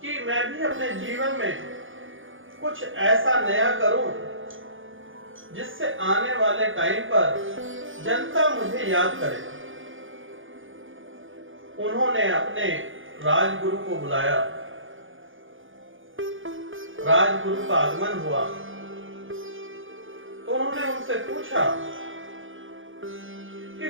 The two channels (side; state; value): left; late; 0.58 ms